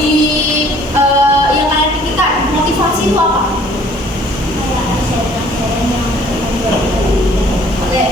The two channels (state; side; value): normal; both; correlation 0.56